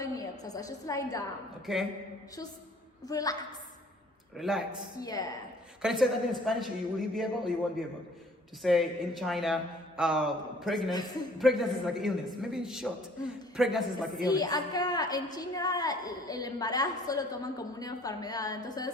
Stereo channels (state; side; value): normal; both; correlation 0.55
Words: exercise, just lie down, Okay. just relax. Relax. Yeah. Can you say that in Spanish? Will you be able or you won't be able to say in China, pregnancy is like illness? Maybe in short, pregnancy is like Sí, illness. acá en China el embarazo lo toman como una enfermedad, entonces